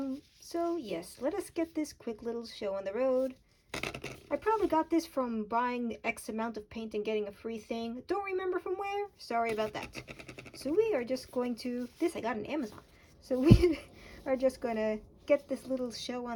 So yes, let us get this quick little show on the road. I probably got this from buying X amount of paint and getting a free thing. Don't remember from where. Sorry about that. So we are just going to, this I got on Amazon. So we are just going to get this little show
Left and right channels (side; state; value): both; identical; correlation 1.00